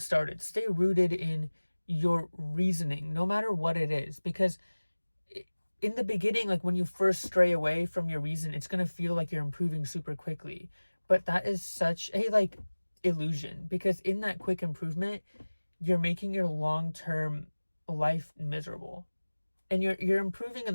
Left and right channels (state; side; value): inverted; both; correlation -1.00